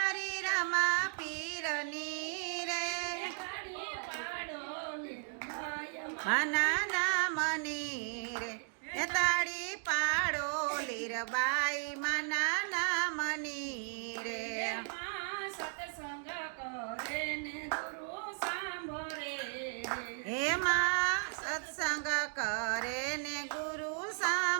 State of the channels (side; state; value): left; silent; 54 dB below the other